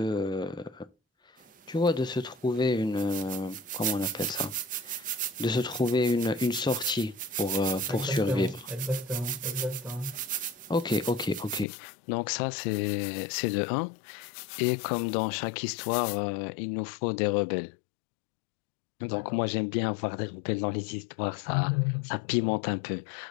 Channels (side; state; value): right; drops out; at 11.7 s